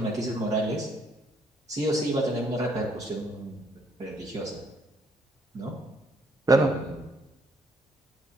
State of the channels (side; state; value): both; normal; correlation 0.68